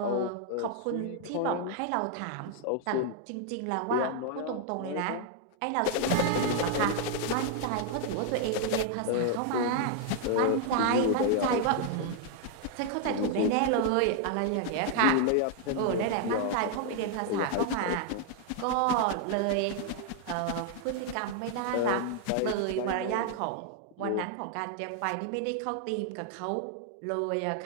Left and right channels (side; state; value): both; different; correlation 0.00